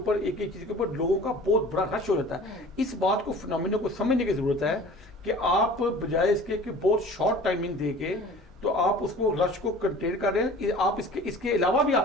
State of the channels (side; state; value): both; normal; correlation 0.44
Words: ایک چیز کے اوپر لوگوں کا بہت بڑا رش ہو جاتا ہے. اس بات کو فنامینو کو سمجھنے کی ضرورت ہے کہ آپ بجائے اس کے کہ بہت شارٹ ٹائمنگ دے کے تو آپ اس کو رش کو کنٹین کر رہے ہیں. آپ اس کے علاوہ بھی